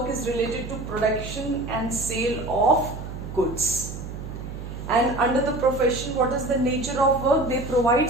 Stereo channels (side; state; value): right; noise; hum, 9 dB below the sound